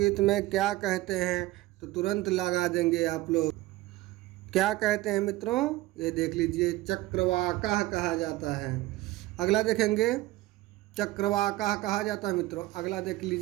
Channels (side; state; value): left; quieter; 18.0 dB